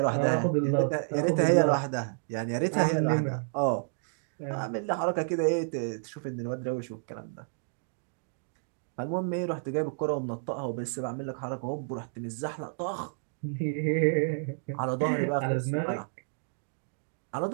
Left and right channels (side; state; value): left; silent; digital silence